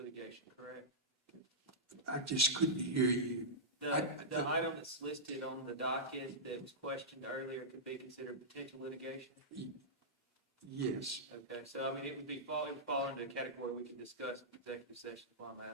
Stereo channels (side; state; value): both; normal; correlation -0.12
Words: correct? I just couldn't hear you. The item that's listed on the docket that was questioned earlier could be considered potential litigation? Yes, Okay, so I mean, it would fall into a category we can discuss in executive session, is why I'm